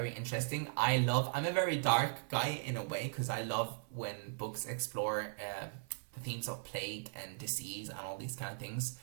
interesting. I'm a very dark guy in a way, because I love when books explore the themes of plague and disease and all these kind of things.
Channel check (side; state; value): left; silent; 52 dB below the other